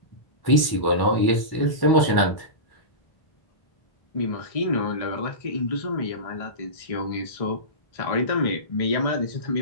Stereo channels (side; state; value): right; late; 1.1 ms